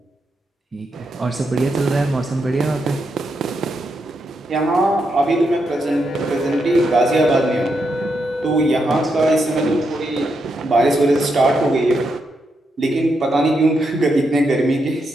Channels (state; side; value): normal; both; correlation 0.82